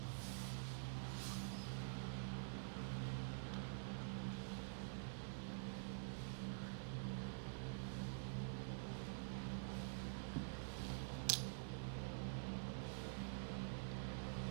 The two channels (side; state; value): left; silent; digital silence